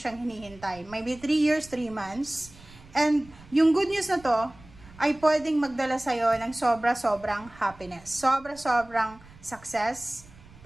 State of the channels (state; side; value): noise; right; rumble, 22 dB below the sound